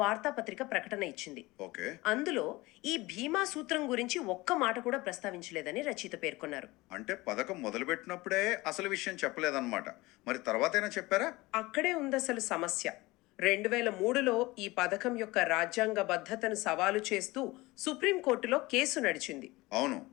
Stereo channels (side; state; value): right; quieter; 21.1 dB